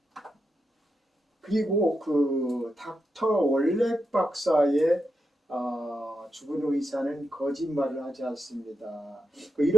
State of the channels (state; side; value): normal; both; correlation 0.86